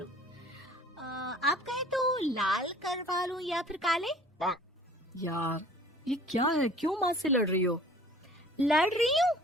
आप कहें तो लाल करवा लूं या फिर काले? यार ये क्या है, क्यों माँ से लड़ रही हो? लड़ रही हूँ?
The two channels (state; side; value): normal; both; correlation 0.49